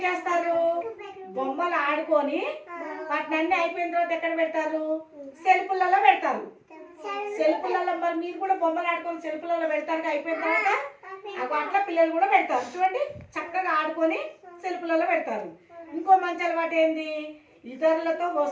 చేస్తారు? బొమ్మలు ఆడుకొని వాటిని అయిపోయిన తర్వాత ఎక్కడ పెడతారు? సెల్ఫులలో పెడతారు. సెల్ఫులలో మరి మీరు కూడా బొమ్మలు ఆడుకొని సెల్ఫులలో పెడతారు అయిపోయిన తర్వాత. అట్లా పిల్లలు కూడా పెడతారు. చూడండి చక్కగా ఆడుకొని సెల్ఫులలో పెడతారు. ఇంకో మంచి అలవాటు ఏంది? ఇతరులతో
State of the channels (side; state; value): both; identical; correlation 1.00